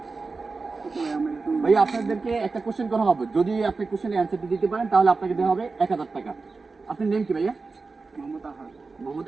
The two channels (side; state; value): left; quieter; 4.1 dB